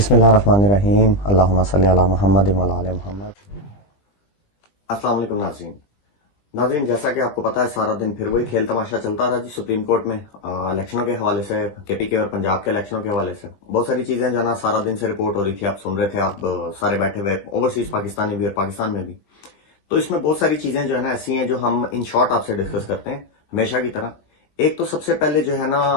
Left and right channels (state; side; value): late; right; 20 ms